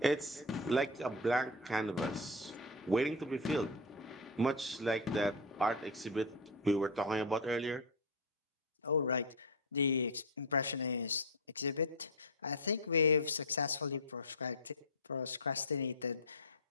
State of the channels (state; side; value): normal; both; correlation 0.10